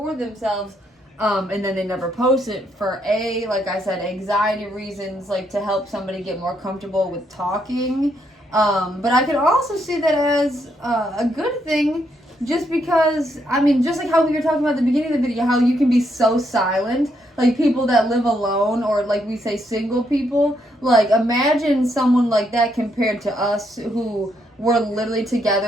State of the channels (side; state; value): both; normal; correlation 0.76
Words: themselves, and then they never post it for like I said, anxiety reasons, to help somebody get more comfortable with talking. But I could also see that as a good thing. Just because, just like how we were talking about at the beginning of the video, how you can be so silent, people that live alone, or we say single people, imagine someone like that compared to us who were literally